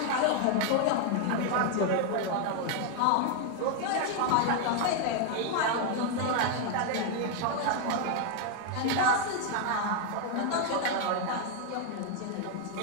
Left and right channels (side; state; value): both; different; correlation 0.01